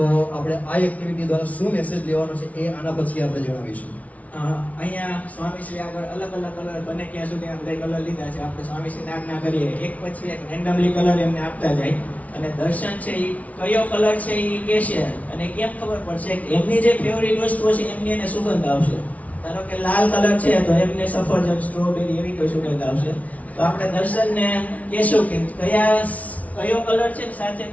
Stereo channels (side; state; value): right; late; 0.069 ms